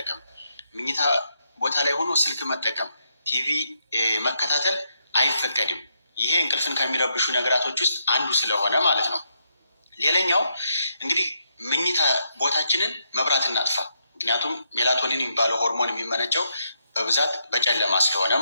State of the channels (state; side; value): inverted; both; correlation -0.78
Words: ምኝታ ቦታ ላይ ሆኖ ስልክ መጠቀም፣ ቲቪ መከታተል አይፈቀድም። ይሄ እንቅልፍን ከሚረብሹ ነገራቶች ውስጥ አንዱ ስለሆነ ማለት ነው። ሌላኛው እንግዲህ ምኝታ ቦታችንን መብራት እናጥፋ። ምክንያቱም ሜላቶኒን የሚባለው ሆርሞን የሚመነጨው በብዛት በጨለማ ስለሆነ